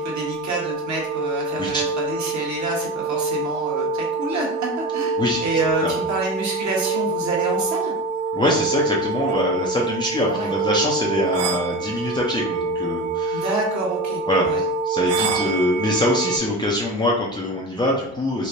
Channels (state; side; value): normal; both; correlation 0.28